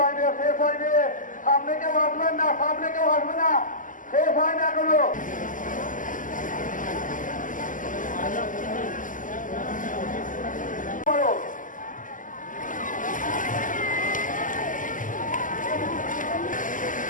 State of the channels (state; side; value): late; right; 0.38 ms